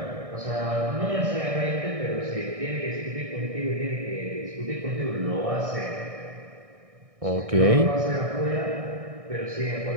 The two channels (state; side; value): late; left; 1.6 ms